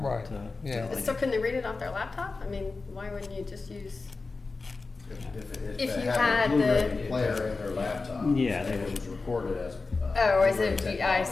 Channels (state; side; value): quieter; right; 3.9 dB